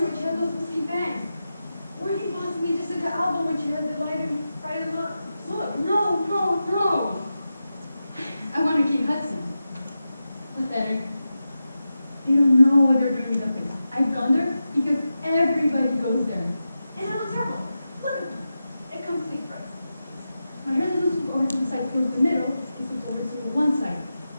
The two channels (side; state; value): both; inverted; correlation -0.91